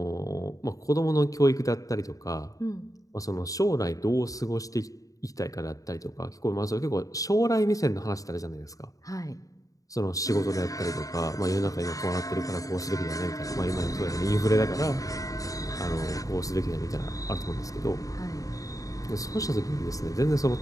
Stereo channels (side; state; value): right; late; 0.17 ms